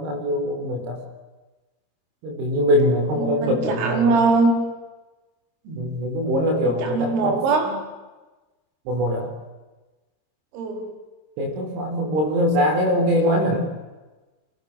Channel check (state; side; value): late; left; 26 ms